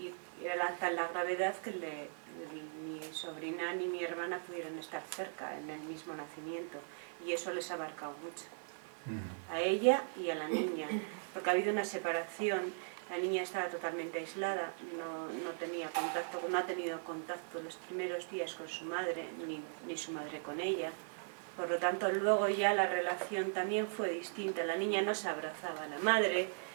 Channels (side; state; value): left; silent; 52 dB below the other